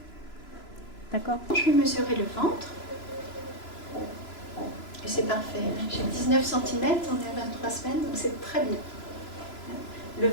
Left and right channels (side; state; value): right; late; 3.0 ms